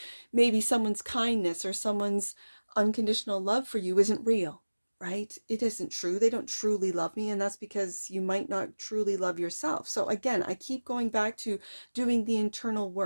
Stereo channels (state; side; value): inverted; both; correlation -1.00